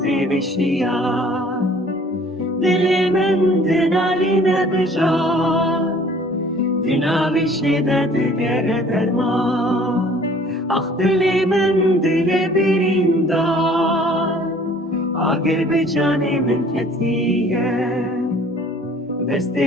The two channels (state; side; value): normal; both; correlation 0.53